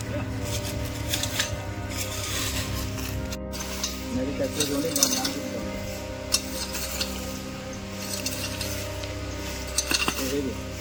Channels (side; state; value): both; identical; correlation 1.00